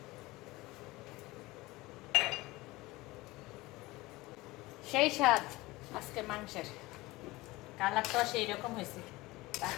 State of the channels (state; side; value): quieter; right; 20.5 dB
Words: সেই স্বাদ আজকে মাংসের, কালারটা সেই রকম হয়েছে।